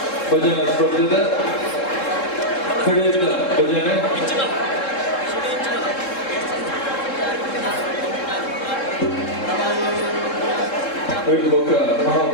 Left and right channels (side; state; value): right; late; 3.7 ms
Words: ಭಜನಾ ಸ್ಪರ್ಧೆದ ಕಡೆಯಿಂದ ಭಜನೆ ಐದು ಪಕ್ಕ